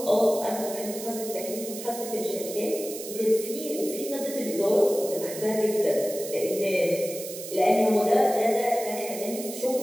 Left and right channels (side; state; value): right; noise; hiss, 10 dB below the sound